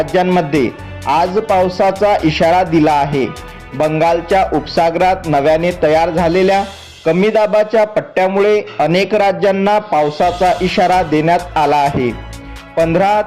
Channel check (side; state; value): both; identical; correlation 1.00